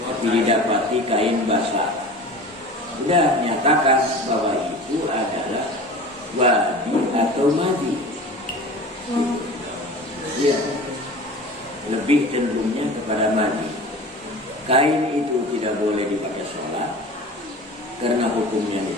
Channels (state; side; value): normal; both; correlation 0.37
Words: tapi didapati kain basah. Sudah nyatakan bahwa itu adalah wadi atau madi. Ya, lebih cenderungnya kepada madi. Kain itu tidak boleh dipakai sholat karena hukumnya